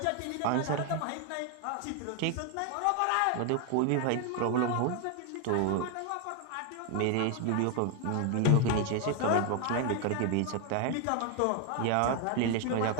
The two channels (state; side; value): different; both; correlation 0.01